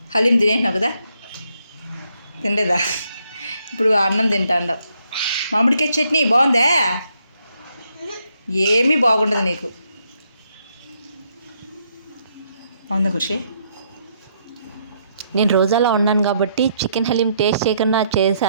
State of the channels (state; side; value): inverted; both; correlation -0.74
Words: హలీం తినేసినావు కదా, తినలేదా? ఇప్పుడు అన్నం తింటాండవు. మామిడికాయ చట్నీ బాగుందే? ఏమీ బాగుండదు నీకు. బాగుందా ఖుషి? నేను రోజాలో ఉన్నాను కాబట్టి చికెన్ హలీం టేస్ట్ చేయకుండా